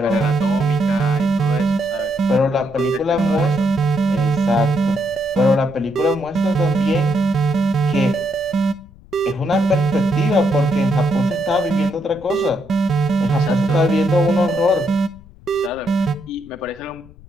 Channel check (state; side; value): noise; left; rumble, 23 dB below the sound